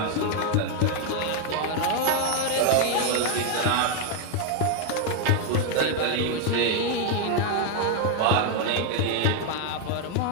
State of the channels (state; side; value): different; both; correlation 0.01